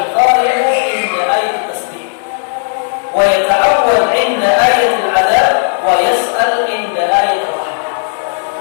inda ayat tasbih wa yata'awwal inda ayat al-'adab wa yas'al inda ayat ar-rahmah.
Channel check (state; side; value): silent; right; digital silence